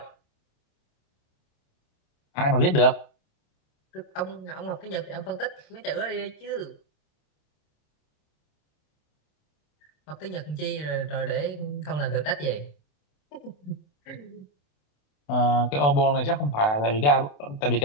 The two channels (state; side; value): late; right; 28 ms